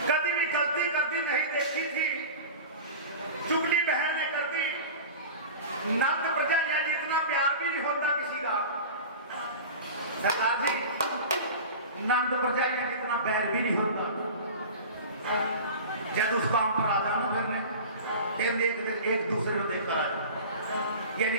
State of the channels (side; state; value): both; inverted; correlation -0.33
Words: कभी भी गलती करती नहीं देखी थी। चुगली बहन ने कर दी। नंद प्रजा यानी इतना प्यार भी नहीं होता किसी का। सरदार जी, नंद प्रजा यानी इतना बैर भी नहीं होता। जब उस काम पर आ जाना फिर एक दूसरे को देखकर आ जाए, यानी